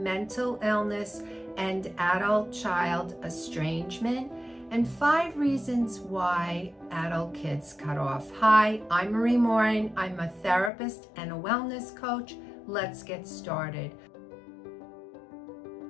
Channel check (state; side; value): drops out; right; at 10.7 s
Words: mental illness and adult-child estrangement and 5 reasons why adult kids cut off. Hi, I'm Marie Morin. I'm a therapist and a wellness coach. Let's get started.